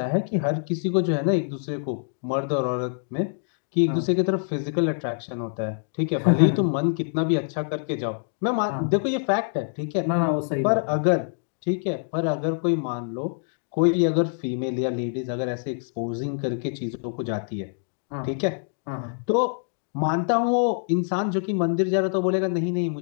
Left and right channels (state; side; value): silent; right; digital silence